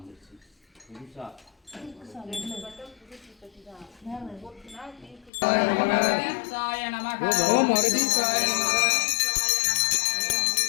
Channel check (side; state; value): right; drops out; at 5.3 s